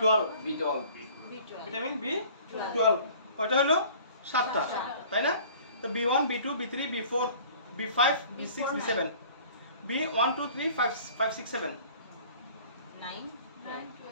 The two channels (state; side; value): inverted; both; correlation -0.48